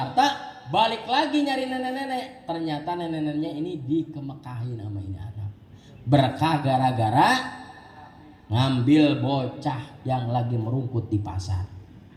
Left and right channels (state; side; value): identical; both; correlation 1.00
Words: balik lagi nyari nenek-nenek. Ternyata nenek-neneknya ini dikemekahin sama ini anak. Berkah gara-gara ngambil bocah yang lagi merungkut di pasar.